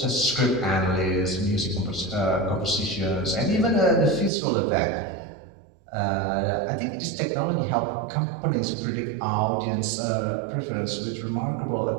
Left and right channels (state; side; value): drops out; left; at 4.3 s